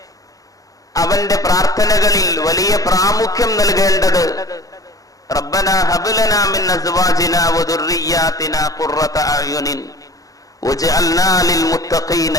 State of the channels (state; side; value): late; right; 0.17 ms